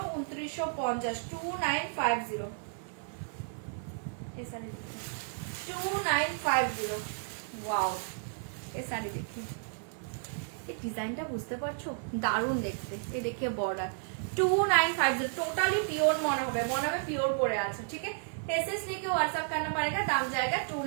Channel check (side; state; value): left; silent; digital silence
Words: 2950, 2950। ये साड़ी देखिए 2950, वाओ ये साड़ी देखिए, ये ডিজাইনটা বুঝতে পারছো, দারুণ দেখতে। এই দেখে বর্ডার 2950, টোটালি পিওর মনে হবে পিওর পরে আছে। ঠিক আছে, एसएस लेके व्हाट्सएप करना पड़ेगा, दाम जाएगा